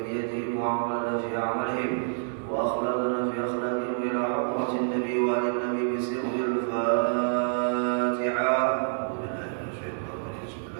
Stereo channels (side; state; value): left; silent; digital silence